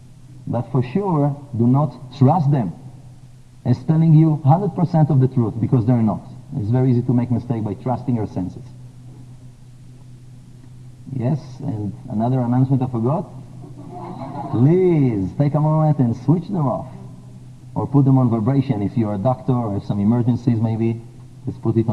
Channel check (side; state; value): both; identical; correlation 1.00